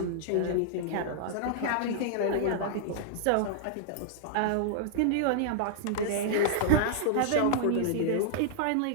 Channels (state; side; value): different; both; correlation -0.01